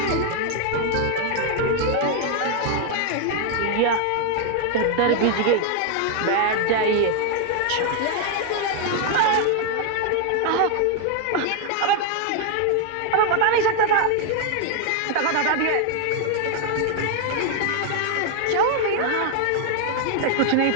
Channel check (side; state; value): both; different; correlation 0.00